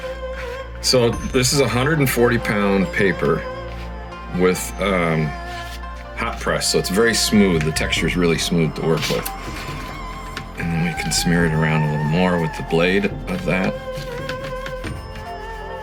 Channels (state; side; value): identical; both; correlation 1.00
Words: So this is a 140-pound paper with hot press, so it's very smooth. The texture is really smooth to work with. And then we can smear it around a little more with the blade of that.